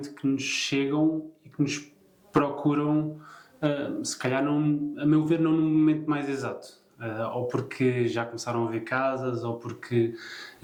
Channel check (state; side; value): identical; both; correlation 1.00